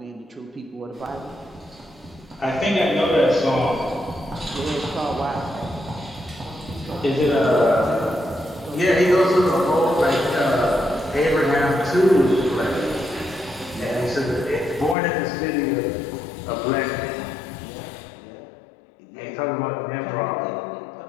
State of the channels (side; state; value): right; drops out; at 15.0 s